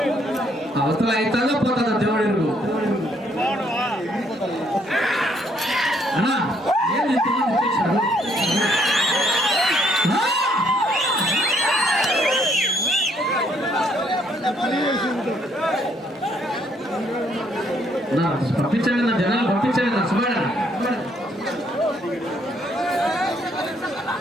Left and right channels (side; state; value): both; normal; correlation 0.69